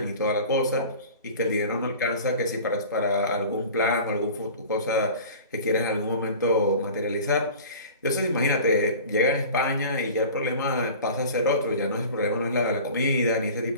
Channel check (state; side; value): inverted; both; correlation -0.40